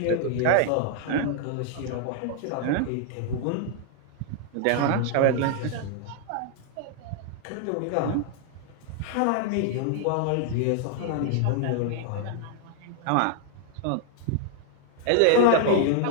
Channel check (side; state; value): both; different; correlation 0.00